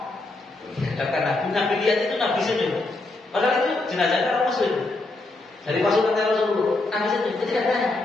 dihadapkan Nabi. Nabi lihat itu, Nabi senyum. Padahal itu jenazahnya orang Muslim dari pasukan Rasulullah. Nabi senyum. Ketika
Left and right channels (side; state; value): right; quieter; 3.0 dB